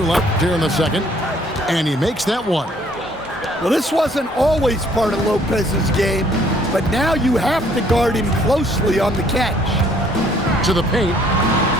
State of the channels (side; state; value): both; normal; correlation 0.62